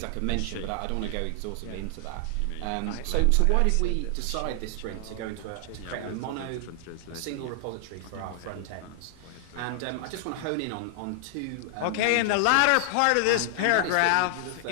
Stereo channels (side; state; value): both; different; correlation 0.00